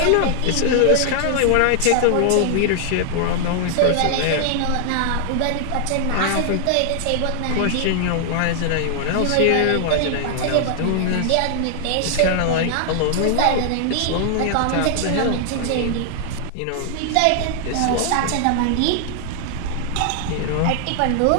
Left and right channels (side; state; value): both; different; correlation 0.00